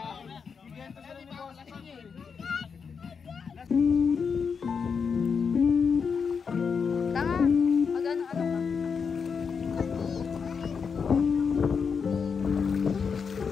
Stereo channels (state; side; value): quieter; right; 6.0 dB